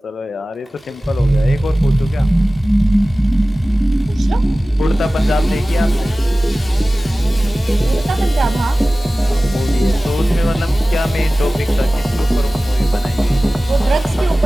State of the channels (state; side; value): normal; both; correlation 0.97